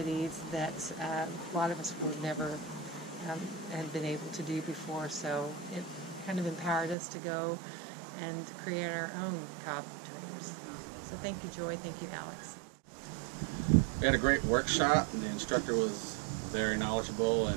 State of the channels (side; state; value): left; drops out; at 7.0 s